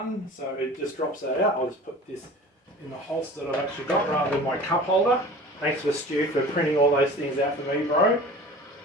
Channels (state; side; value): normal; both; correlation 0.41